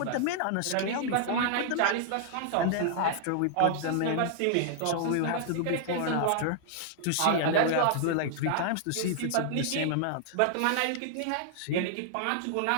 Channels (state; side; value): different; both; correlation -0.01